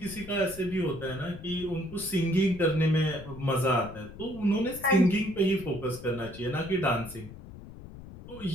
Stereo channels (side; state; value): left; noise; rumble, 15 dB below the sound